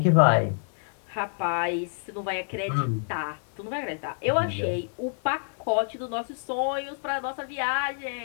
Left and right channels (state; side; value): silent; right; 60 dB below the other